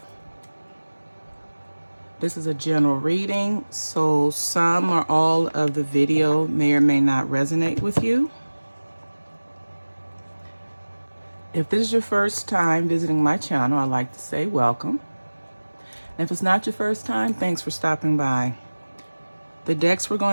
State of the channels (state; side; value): inverted; both; correlation -1.00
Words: This is a general reading, so some or all of the video may or may not resonate with you. If this is your first time visiting my channel, I'd like to say welcome. And if it's not your first time, thanks for stopping by. The decks we're